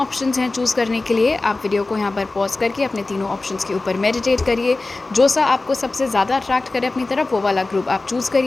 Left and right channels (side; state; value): right; quieter; 3.3 dB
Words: हैं चूज़ करने के लिए। आप वीडियो को यहाँ पर पॉज करके अपने तीनों ऑप्शंस के ऊपर मेडिटेट करिए। जो सा आपको सबसे ज़्यादा अट्रैक्ट करे अपनी तरफ, वो वाला ग्रुप आप चूज़